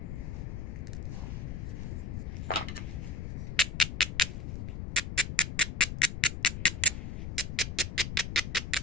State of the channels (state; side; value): noise; left; rumble, 5 dB below the sound